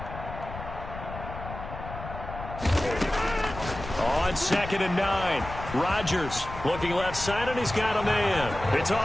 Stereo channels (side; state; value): left; noise; rumble, 10 dB below the sound